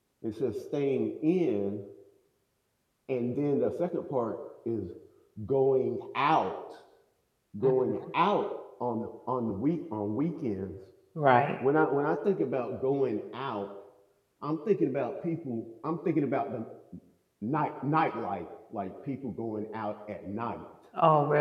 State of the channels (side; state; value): both; identical; correlation 1.00